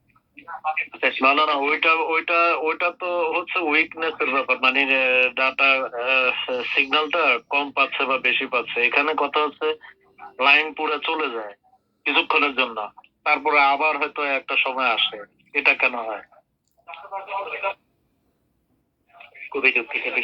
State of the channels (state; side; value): identical; both; correlation 1.00